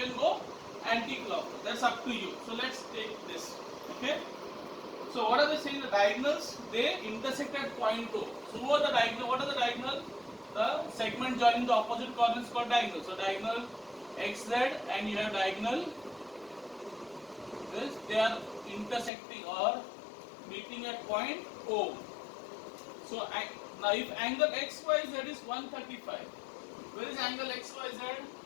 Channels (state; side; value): drops out; right; at 19.1 s